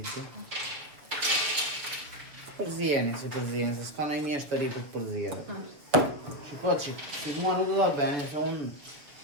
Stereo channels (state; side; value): late; left; 6.9 ms